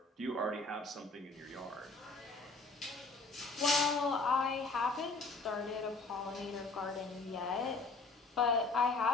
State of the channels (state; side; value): quieter; right; 3.5 dB